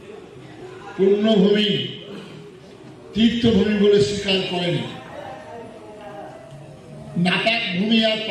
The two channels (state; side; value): identical; both; correlation 1.00